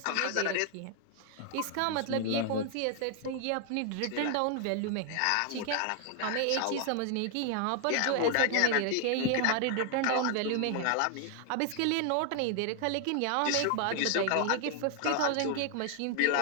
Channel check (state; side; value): different; both; correlation 0.00